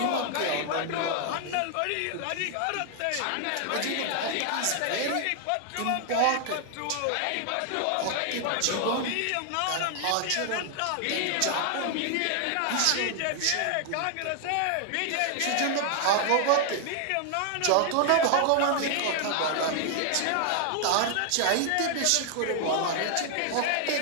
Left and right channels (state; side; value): different; both; correlation 0.00